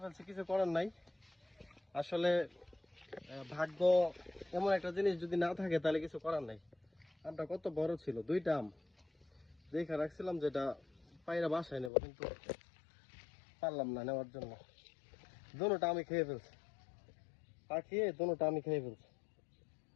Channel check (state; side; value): drops out; right; at 11.9 s